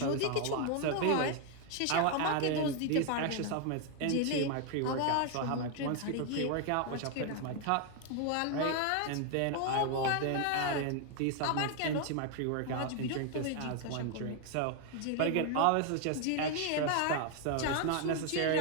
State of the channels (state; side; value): different; both; correlation 0.01